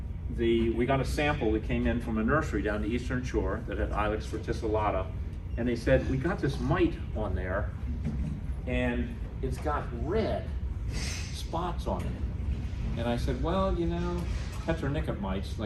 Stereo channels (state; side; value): identical; both; correlation 1.00